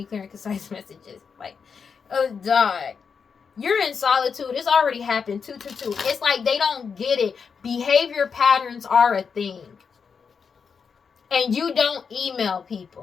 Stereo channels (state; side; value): quieter; right; 6.0 dB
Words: clear and concise messages. Like, oh, dog. You're in solitude. It's already happened. 222. It's like they don't get it. Behavior patterns are a thing. And you don't email